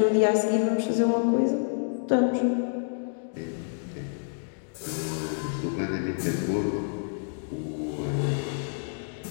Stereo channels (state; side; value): silent; right; digital silence